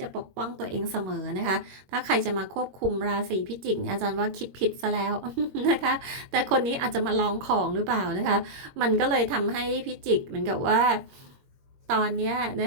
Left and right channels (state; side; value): late; left; 21 ms